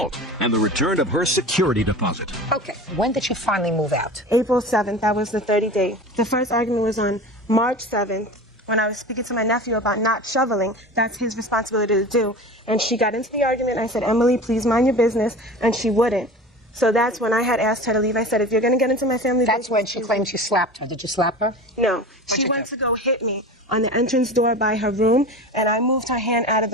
and the return of her security deposit. Okay, when did she finally move out? April 7th, that was the 30th day. The first argument was on March 7th when I was speaking to my nephew about not shoveling. That's his responsibility to do. And she got into the argument. I said, Emily, please mind your business. And she wouldn't. So that's when I had asked her to leave. I said, if you're going to get into my family business... That's when she claimed you slapped her. Did you slap her? No. She went to go hit me on the entrance door by her room, and I moved her hand out of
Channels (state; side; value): normal; both; correlation 0.34